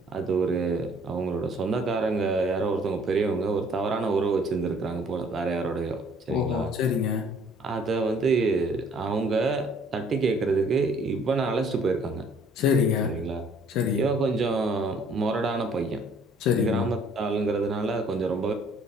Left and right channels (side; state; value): both; normal; correlation 0.59